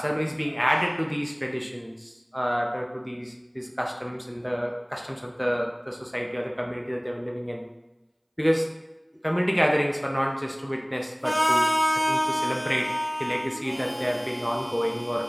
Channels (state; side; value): identical; both; correlation 1.00